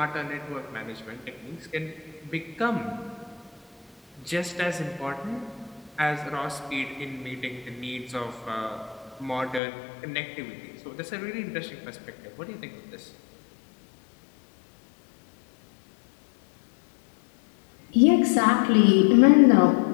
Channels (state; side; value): drops out; right; at 9.6 s